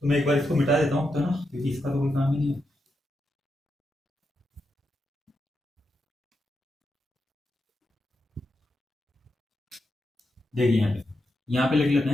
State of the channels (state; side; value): normal; both; correlation 0.85